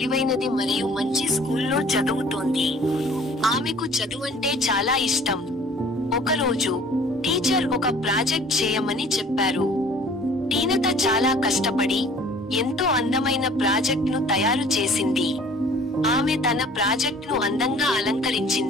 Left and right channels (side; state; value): both; normal; correlation 0.52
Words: మరియు మంచి స్కూల్లో చదువుతోంది. ఆమెకు చదువంటే చాలా ఇష్టం. ఒకరోజు టీచర్ ఒక ప్రాజెక్ట్ చేయమని చెప్పారు. టీనత చాలా కష్టపడి ఎంతో అందమైన ప్రాజెక్ట్ను తయారు చేసింది. ఆమె తన ప్రాజెక్ట్ను అందంగా